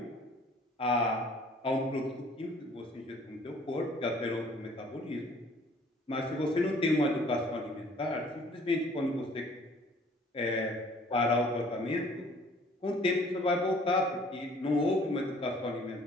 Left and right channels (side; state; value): both; normal; correlation 0.55